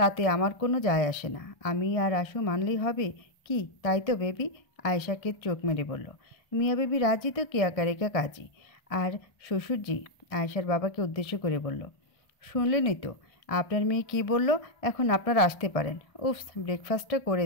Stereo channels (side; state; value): right; late; 1.6 ms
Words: আমার কোনো যায় আসে না। আমি আর আশু মানলেই হবে কি, তাই তো বেবি? আয়েশাকে চোখ মেরে বলল। মিয়া বেবি রাজি তো কেয়া কারেকা কাজী। আর শ্বশুরজি আয়েশার বাবাকে উদ্দেশ্য করে বলল, শুনলেনই তো আপনার মেয়ে কি বলল, এখন আপনারা আসতে পারেন। উফস, ব্রেকফাস্টটা করে